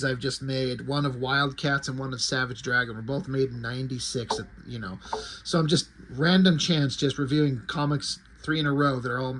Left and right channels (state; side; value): identical; both; correlation 1.00